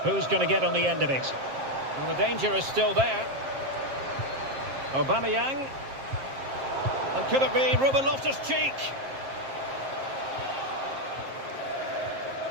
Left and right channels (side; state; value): left; late; 7.5 ms